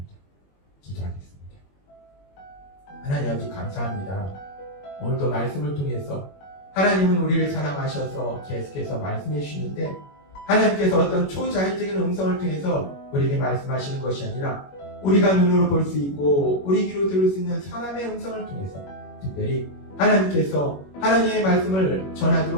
기도하겠습니다. 하나님 아버지 감사합니다. 오늘도 말씀을 통해서 하나님은 우리를 사랑하셔서 계속해서 말씀해 주시는데 하나님께서 어떤 초자연적인 음성을 통해서 우리에게 말씀하시는 것이 아니라 우리가 눈으로 볼 수 있고 우리 귀로 들을 수 있는 사람의 음성을 통해서 특별히 하나님께서 하나님의 말씀을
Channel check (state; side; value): late; right; 21 ms